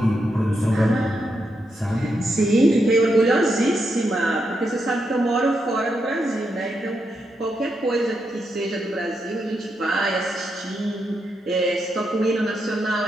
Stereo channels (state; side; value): normal; both; correlation 0.83